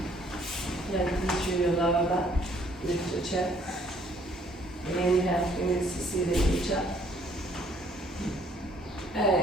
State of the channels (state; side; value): normal; both; correlation 0.62